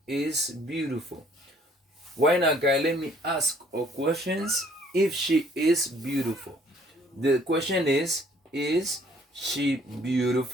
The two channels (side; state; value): both; normal; correlation 0.60